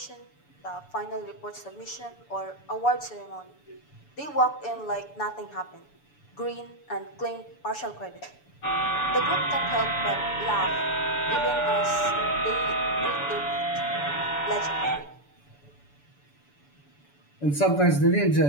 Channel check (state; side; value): late; right; 6.9 ms